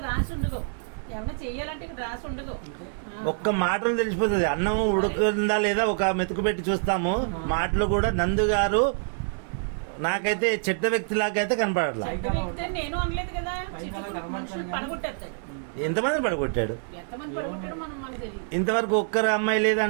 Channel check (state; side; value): silent; left; digital silence